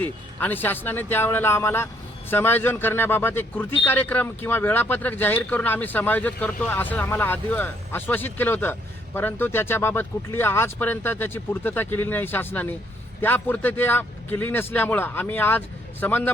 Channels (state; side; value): normal; both; correlation 0.68